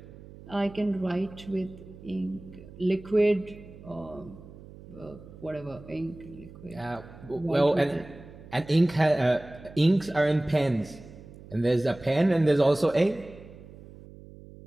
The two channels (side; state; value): right; noise; hum, 18 dB below the sound